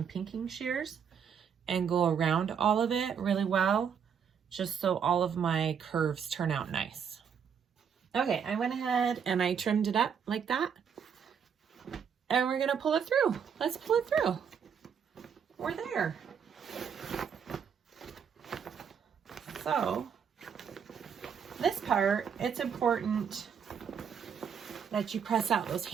pinking shears and go around all of it really well, just so all of my curves turn out nice. Okay, I went ahead and I trimmed it up like that. And we're gonna pull it through. Let's pull it through. We're there. So, this part, it's important that you press out those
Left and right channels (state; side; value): quieter; left; 7.3 dB